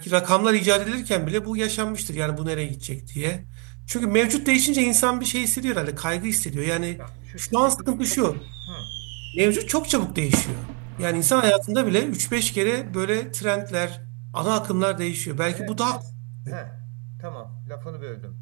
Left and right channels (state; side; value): quieter; left; 35.6 dB